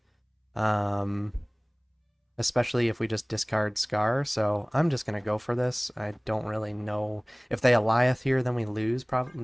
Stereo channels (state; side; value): identical; both; correlation 1.00